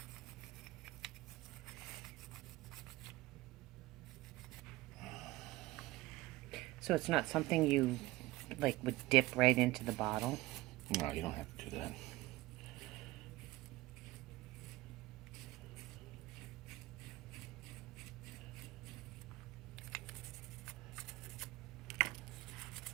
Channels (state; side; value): quieter; left; 19.3 dB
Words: So it's not something you like would dip right into the bottle? No, you don't have to do that.